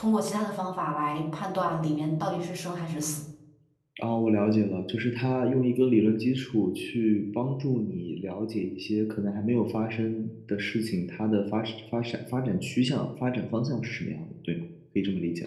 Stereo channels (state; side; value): identical; both; correlation 1.00